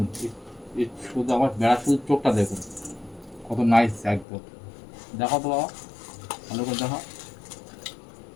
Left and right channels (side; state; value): right; drops out; at 4.2 s